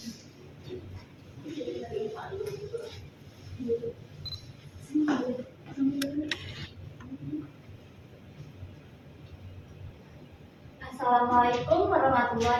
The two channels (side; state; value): both; identical; correlation 1.00